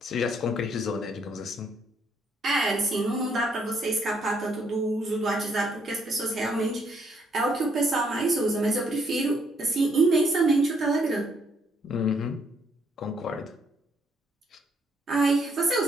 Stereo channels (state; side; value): normal; both; correlation 0.71